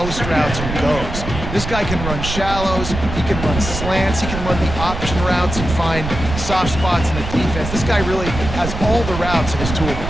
routes and goes. This guy can run shallows, he can run slants, he can run the option routes and find soft spots in the defense. This guy really has all the routes in his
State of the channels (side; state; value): right; noise; rumble, 6 dB below the sound